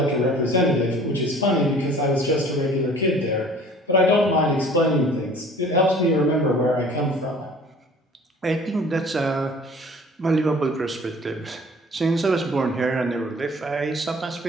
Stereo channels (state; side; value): normal; both; correlation 0.49